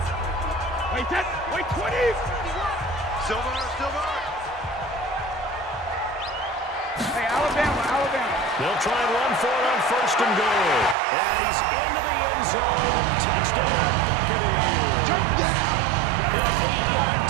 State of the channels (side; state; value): left; drops out; at 11.0 s